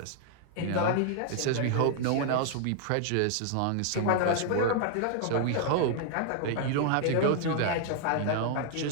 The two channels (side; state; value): both; different; correlation 0.00